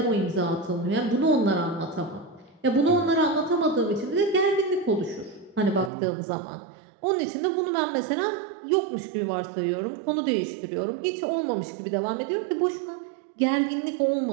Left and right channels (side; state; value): left; drops out; at 5.9 s